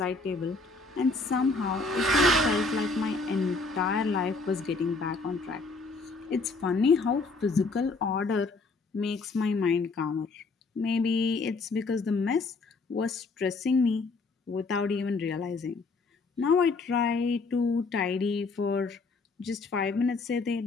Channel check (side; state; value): right; quieter; 3.8 dB